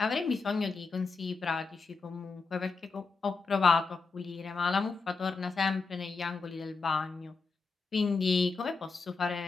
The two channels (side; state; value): right; quieter; 4.4 dB